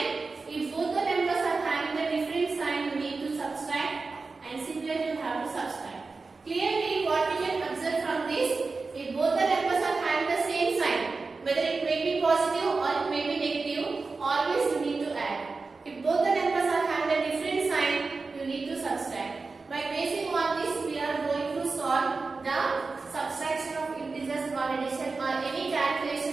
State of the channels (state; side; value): quieter; left; 4.1 dB